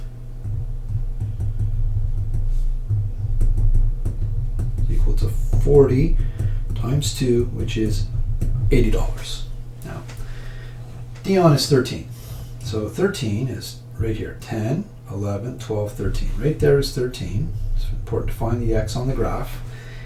equal to 40 times 2, which is $80. Now, Dion is 13. So 13 is right here, 10, 11, 12, 13. Right there is 13. It's important to find the x on the graph.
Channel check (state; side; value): identical; both; correlation 1.00